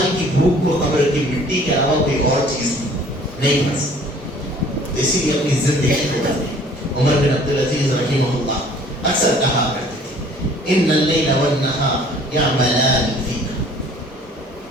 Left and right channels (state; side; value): normal; both; correlation 0.53